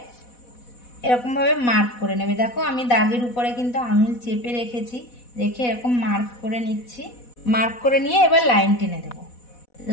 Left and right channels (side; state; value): right; late; 4.1 ms